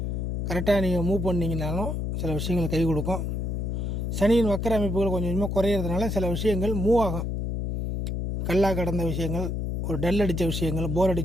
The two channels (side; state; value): left; noise; hum, 2 dB below the sound